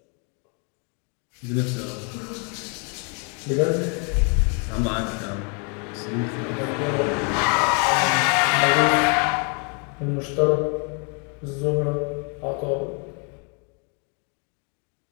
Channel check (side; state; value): right; quieter; 37.0 dB